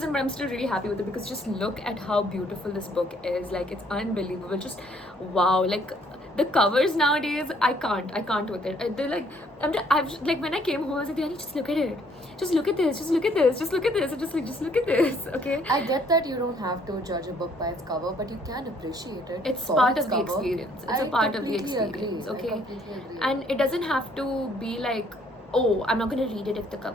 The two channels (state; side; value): normal; both; correlation 0.64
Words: But I'm still really happy with it because just look at how beautiful this book is. Like, it's unbelievable. Just wow. Like, the covers nowadays, I can't with it. They're like, I've like, when I came home, I was like, Diani, just look at it. Just look at this. Just look at this. Just look at this. And just look at this. Okay. I get that you don't have to judge a book by its cover, but you can appreciate it. It's for part its of the cover. experience. It's I a part of the completely experience. agree. Okay. I completely agree. And it doesn't have to be like, oh, I'm not gonna read it if the